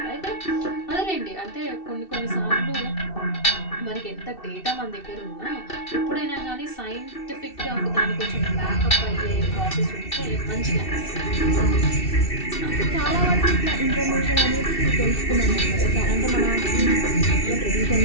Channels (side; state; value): right; late; 2.7 ms